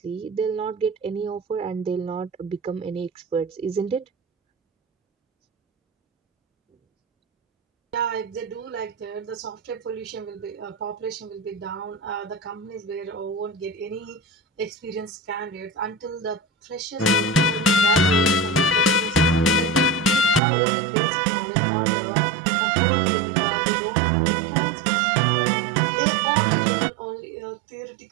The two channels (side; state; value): left; drops out; at 20.4 s